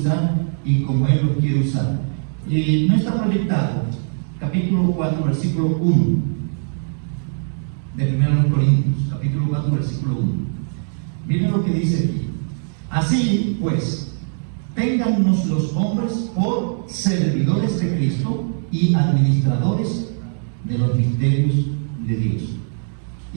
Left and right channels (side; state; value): left; silent; digital silence